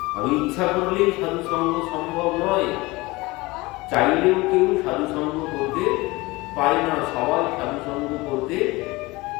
আমি ইচ্ছা করলেই সাধু সঙ্গ সম্ভব নয়, চাইলেও কেউ সাধু সঙ্গ করতে পারে না। সবাই সাধু সঙ্গ করতে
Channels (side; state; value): right; quieter; 22.2 dB